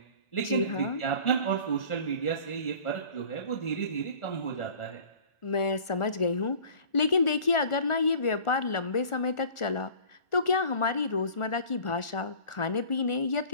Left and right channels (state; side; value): late; right; 1.4 ms